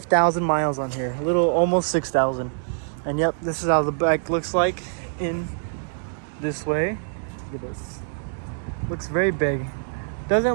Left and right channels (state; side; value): silent; left; digital silence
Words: miles on here, a little almost 6,000. And yep, this is how the bike looks like in this way. Look at this. Looks very big.